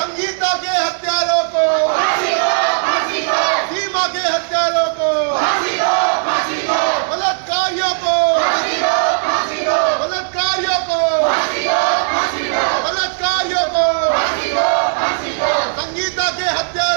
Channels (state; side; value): silent; left; digital silence